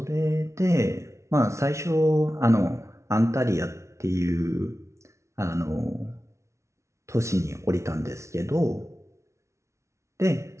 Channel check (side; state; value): left; late; 0.14 ms